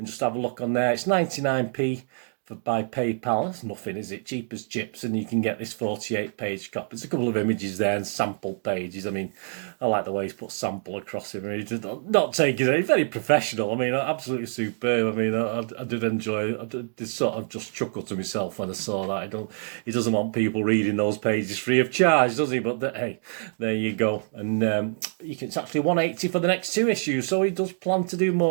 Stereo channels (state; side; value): silent; left; digital silence